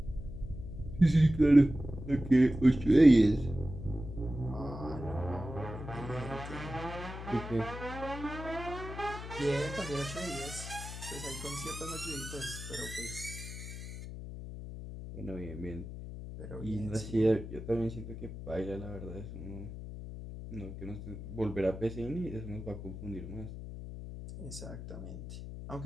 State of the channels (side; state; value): left; noise; hum, 10 dB below the sound